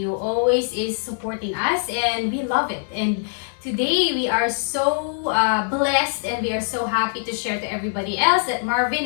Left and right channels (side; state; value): right; silent; digital silence